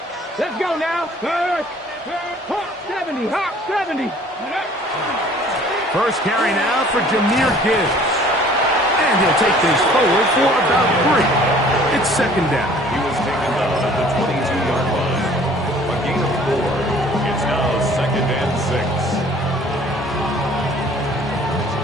Let's go now. Hawk 70, Hawk 70. First carry now for Jahmyr Gibbs. And he'll take this forward for about 3. It's second down. He was taken down at the 22-yard line. A gain of 4. It's now second and 6.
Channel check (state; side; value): normal; both; correlation 0.53